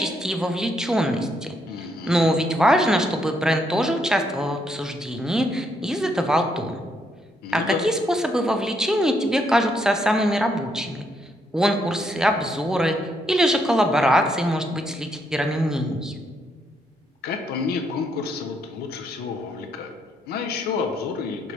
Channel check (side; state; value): both; normal; correlation 0.75